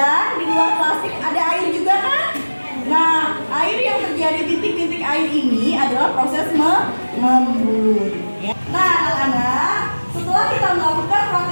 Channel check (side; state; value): both; inverted; correlation -1.00